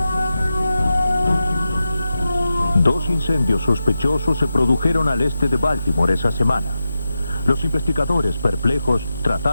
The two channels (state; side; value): inverted; both; correlation -0.90